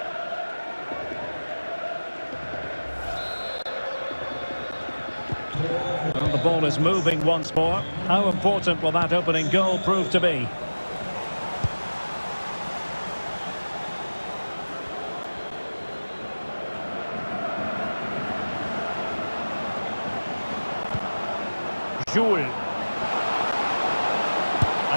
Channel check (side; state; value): both; inverted; correlation -1.00